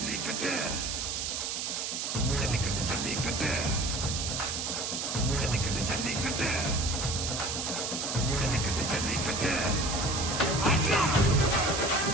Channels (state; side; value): noise; right; hiss, 2 dB below the sound